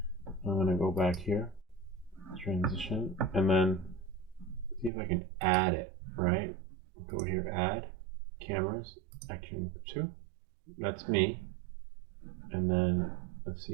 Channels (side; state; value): left; drops out; at 4.9 s